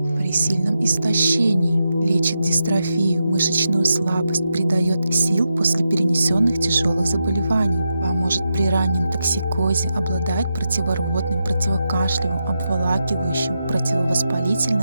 при сильном истощении. Лечит дистрофию, мышечную слабость, придает сил после перенесенных тяжелых заболеваний. Поможет при раннем токсикозе, обладает противорвотным, противокашлевым, обволакивающим,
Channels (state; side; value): inverted; both; correlation -0.87